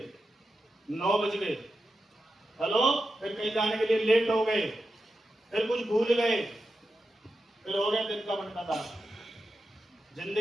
9 बज गए, हेलो, फिर कहीं जाने के लिए लेट हो गए, फिर कुछ भूल गए, फिर हो गया दिन का बंटाधार।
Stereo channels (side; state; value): both; normal; correlation 0.89